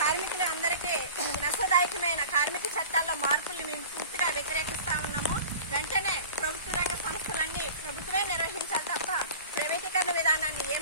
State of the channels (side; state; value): both; inverted; correlation -0.40